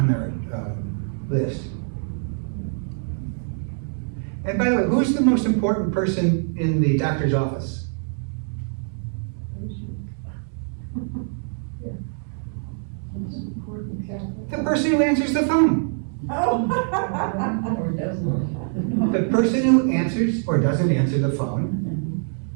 their list. And by the way, who's the most important person in the doctor's office? The person who answers the phone. Or doesn't. The person who answers or doesn't answer the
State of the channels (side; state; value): left; silent; 62 dB below the other